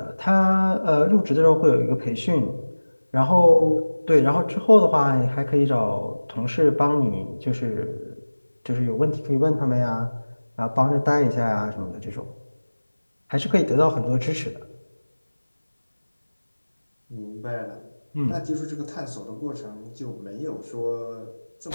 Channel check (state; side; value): inverted; both; correlation -1.00